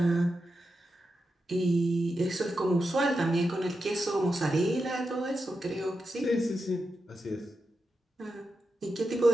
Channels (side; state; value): both; normal; correlation 0.89